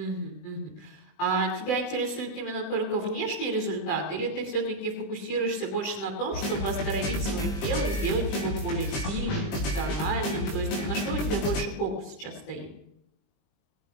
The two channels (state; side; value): late; right; 20 ms